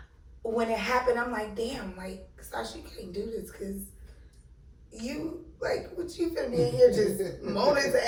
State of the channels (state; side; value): identical; both; correlation 1.00